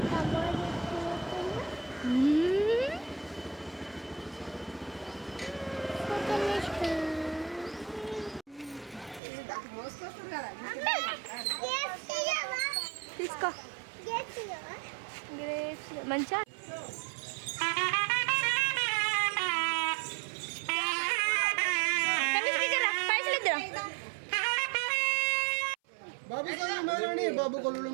తీసుకో మంచిగా బాబు కొల్లు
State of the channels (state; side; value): drops out; left; at 9.2 s